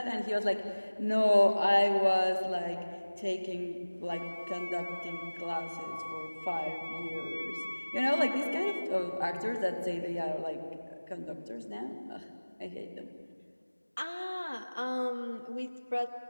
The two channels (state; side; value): inverted; both; correlation -1.00